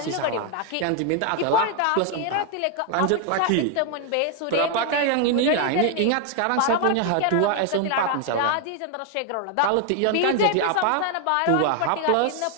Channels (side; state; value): both; different; correlation 0.00